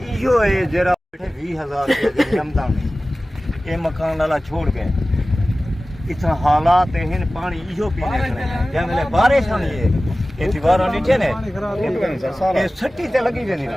इहो है जरा 20,000 रुपये जमदा में ये मकान वाला छोड़ गए इतना हालात हैं पानी इहो पीने जब मेरे बारिश होनी है ये दीवारों नीचे ने ये सट्टी ते लगी वेंदी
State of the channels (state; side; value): normal; both; correlation 0.97